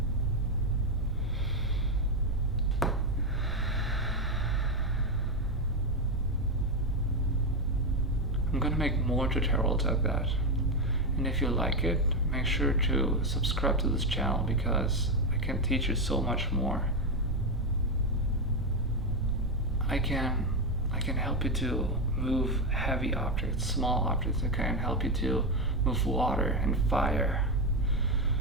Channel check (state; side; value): normal; both; correlation 0.08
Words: I'm gonna make more tutorials like that. And if you like it, make sure to subscribe to this channel because I can teach you so much more. I can help you to move heavy objects, small objects. I can help you to move water and fire.